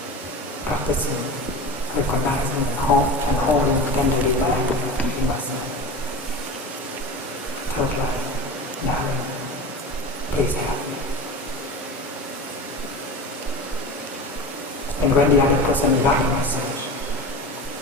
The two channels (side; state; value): both; normal; correlation 0.30